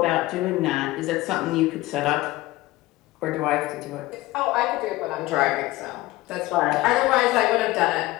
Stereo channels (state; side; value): quieter; right; 18.5 dB